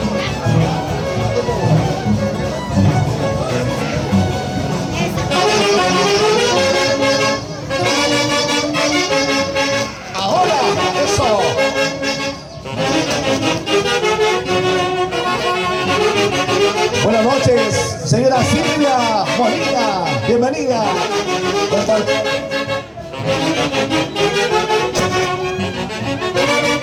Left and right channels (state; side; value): identical; both; correlation 1.00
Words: Buenas noches, señora Silvia Molina, bienvenida.